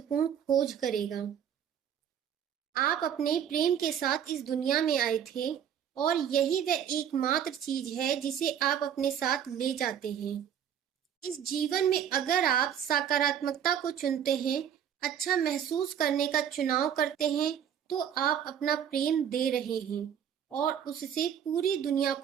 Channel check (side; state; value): left; quieter; 9.0 dB